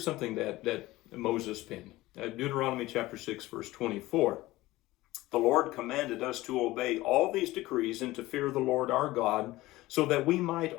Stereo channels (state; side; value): quieter; right; 18.2 dB